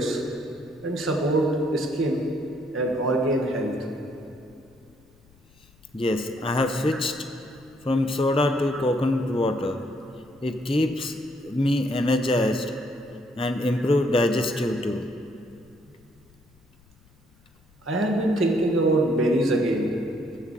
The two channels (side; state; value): left; noise; rumble, 30 dB below the sound